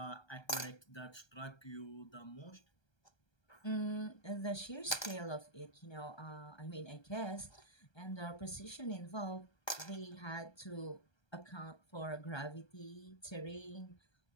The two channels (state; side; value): late; right; 1.3 ms